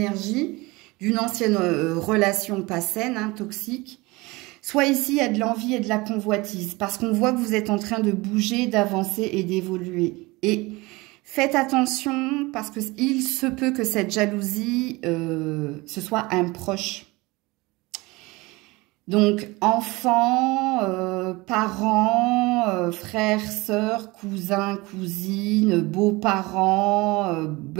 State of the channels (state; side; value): quieter; left; 23.0 dB